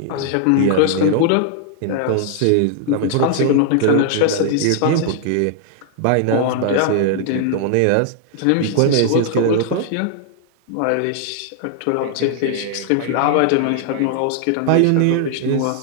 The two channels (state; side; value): different; both; correlation 0.00